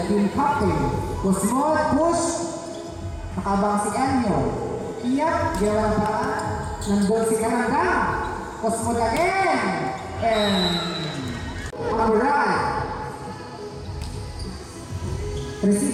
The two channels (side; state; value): both; identical; correlation 1.00